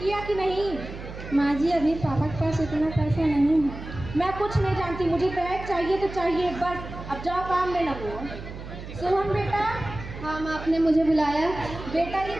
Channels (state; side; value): noise; right; hum, 11 dB below the sound